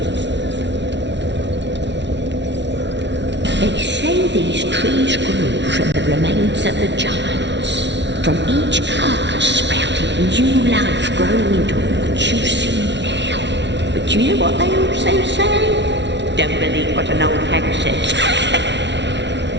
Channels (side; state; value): left; late; 0.51 ms